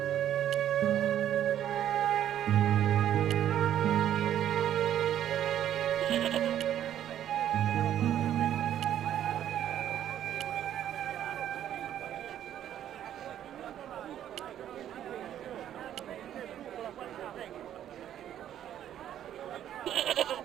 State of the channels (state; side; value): quieter; left; 10.8 dB